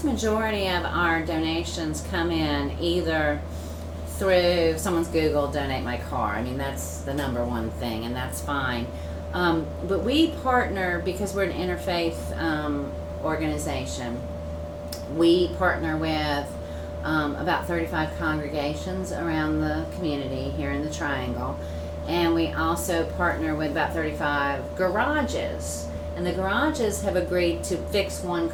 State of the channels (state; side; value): identical; both; correlation 1.00